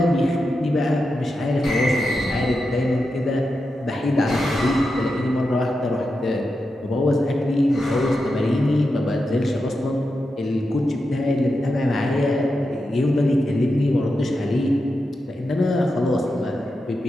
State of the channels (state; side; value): normal; both; correlation 0.88